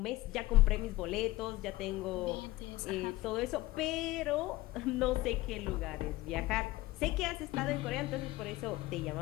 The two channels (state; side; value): quieter; right; 18.6 dB